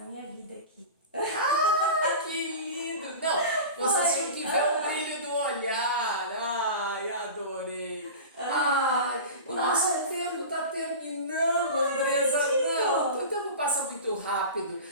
minha vida aqui. Ah, que lindo! Não, vocês tinham que ver o brilho do olhar. Ai, adorei. Ai, o nosso tempo está terminando, Andresa. Não, o tempo passa muito rápido.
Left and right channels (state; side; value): inverted; both; correlation -0.32